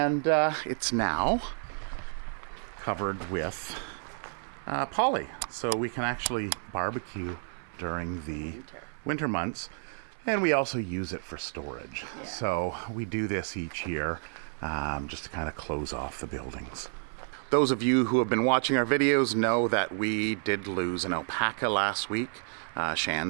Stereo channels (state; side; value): silent; left; 58 dB below the other